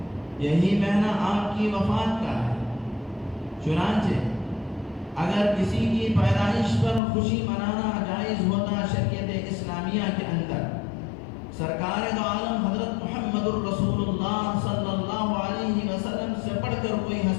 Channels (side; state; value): right; drops out; at 7.0 s